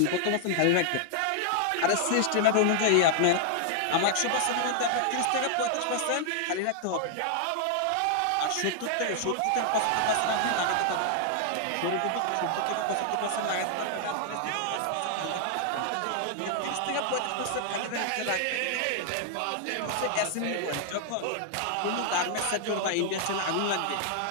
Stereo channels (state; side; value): different; both; correlation -0.01